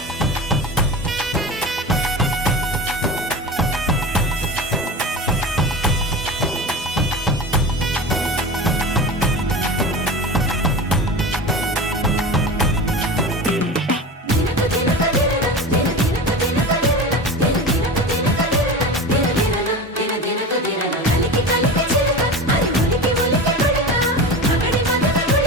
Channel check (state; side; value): normal; both; correlation 0.29